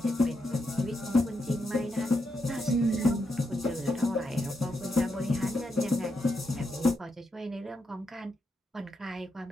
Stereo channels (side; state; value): both; normal; correlation 0.83